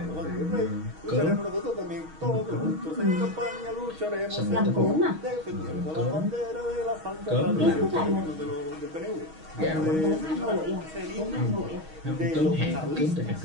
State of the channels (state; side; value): late; left; 6.3 ms